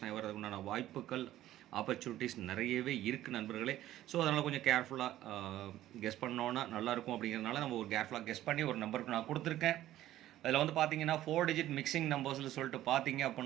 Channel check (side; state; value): left; quieter; 13.8 dB